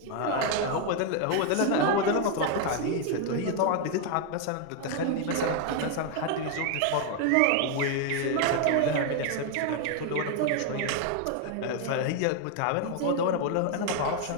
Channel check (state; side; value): different; both; correlation 0.01